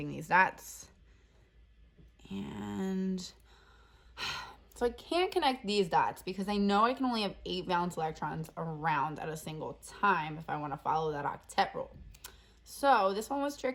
these dots. And so I can't connect these dots because I know I can only have 8 valence electrons around at a single time if I want to follow that octet rule. So this one was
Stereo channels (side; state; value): both; identical; correlation 1.00